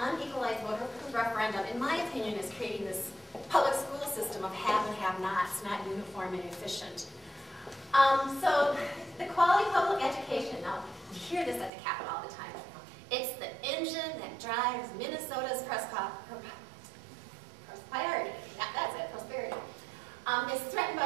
voter referendum, in my opinion, is creating this public school system of have and have-nots, not uniform and efficient. So the quality of public education, now you hear this at the Capitol all the time. It's the engine that drives Minnesota's prosperity. Yeah, that's it, prosperity. It's threatened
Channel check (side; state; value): left; drops out; at 11.7 s